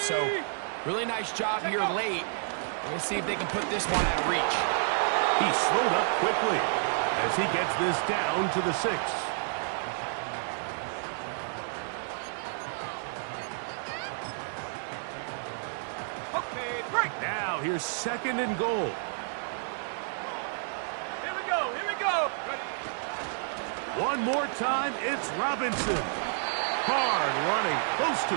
really nice job here late. We're going to see if they can put this one out of reach. He slowed up quickly as he gets this down to the 6. Now here's 2nd and goal. Here we go, here we go. Ready. One more time, it's Robinson. Hard running, close to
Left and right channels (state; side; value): silent; left; digital silence